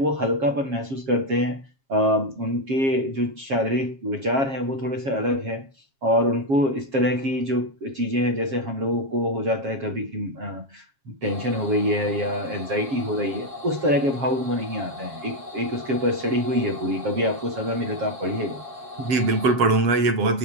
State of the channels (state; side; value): late; left; 7.4 ms